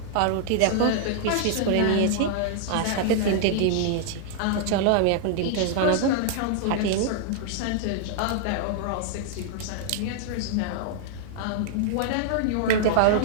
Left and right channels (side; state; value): both; different; correlation -0.01